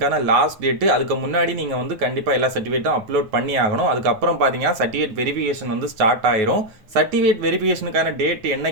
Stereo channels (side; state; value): left; late; 9.3 ms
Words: லாஸ்ட் டேட்டு. அதுக்கு முன்னாடி நீங்கள் வந்து கண்டிப்பாக எல்லா சர்டிஃபிகேட்டும் அப்லோட் பண்ணி ஆகணும். அதுக்கப்புறம் பார்த்தீங்கன்னா சர்டிஃபிகேட் வெரிஃபிகேஷன் வந்து ஸ்டார்ட் ஆயிரும். சர்டிஃபிகேட் வெரிஃபிகேஷனுக்கான டேட்